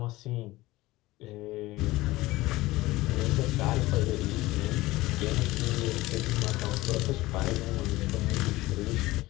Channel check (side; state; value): right; quieter; 18.8 dB